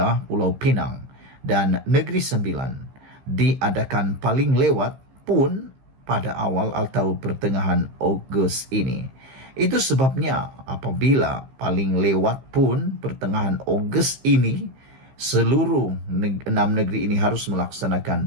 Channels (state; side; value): late; left; 15 ms